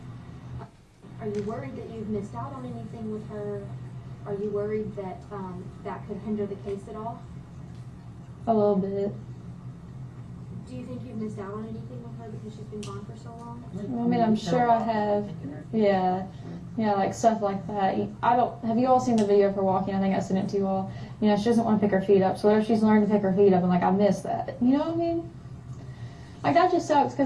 Are you worried that you've missed out on anything with her? Are you worried that that could hinder the case at all? A little bit. Do you think you've missed out on anything with her because she's been gone for so long? I mean, I'm sure I have. Yeah. Yeah, like stuff like that. Have you all seen the video of her walking? I think I sent it to you all. You know, she doesn't want to pick her feet up. So what if she's learned to pick her feet up and like, I miss that? You know what I mean? Like, that just sucks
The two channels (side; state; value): both; identical; correlation 1.00